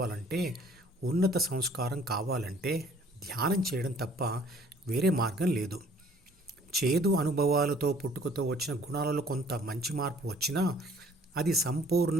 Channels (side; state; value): both; normal; correlation 0.56